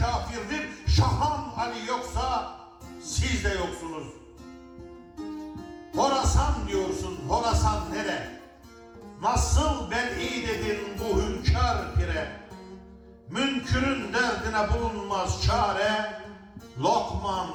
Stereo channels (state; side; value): identical; both; correlation 1.00